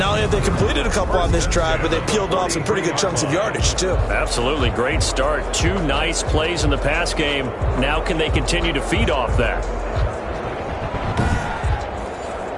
only have they completed a couple on this drive, but they peeled off some pretty good chunks of yardage, too. Absolutely. Great start. 2 nice plays in the pass game. Now can they continue to feed off that?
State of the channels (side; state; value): both; identical; correlation 1.00